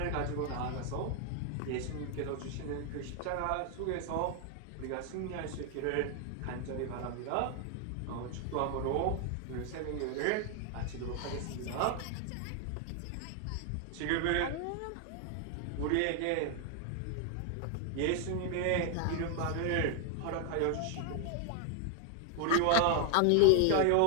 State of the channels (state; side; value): different; both; correlation 0.00